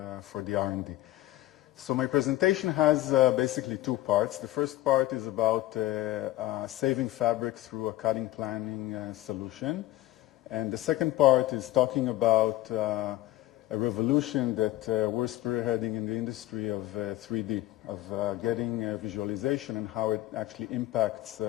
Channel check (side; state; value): right; quieter; 15.8 dB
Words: the R&D. So my presentation has basically two parts. The first part is about saving fabric through a cutting planning solution. And the second part is talking about a revolution that we're spearheading in the industry of 3D, of getting visualization and how it actually impacts